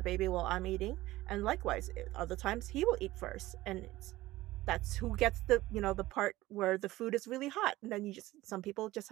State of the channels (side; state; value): left; quieter; 17.3 dB